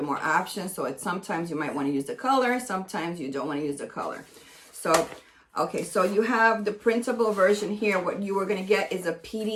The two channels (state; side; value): identical; both; correlation 1.00